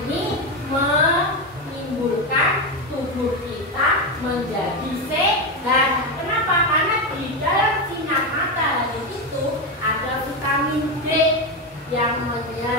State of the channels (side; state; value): both; normal; correlation 0.12